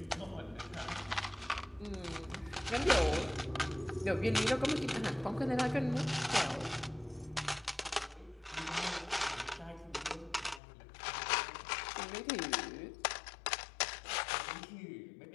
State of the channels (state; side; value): drops out; right; at 10.6 s